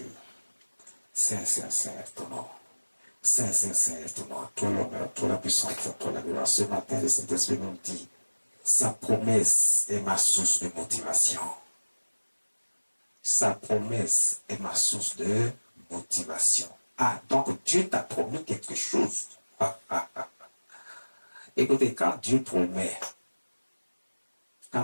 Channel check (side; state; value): both; inverted; correlation -1.00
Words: Saint, Saint, Saint est ton nom. Saint, Saint, Saint est ton nom. Toi l'honneur, toi la puissance, toi la gloire. Ce matin, le Saint-Esprit nous dit, sa promesse est ma source de motivation. Sa promesse est ma source de motivation. Ah, donc Dieu t'a promis quelque chose. Écoutez, quand Dieu promet,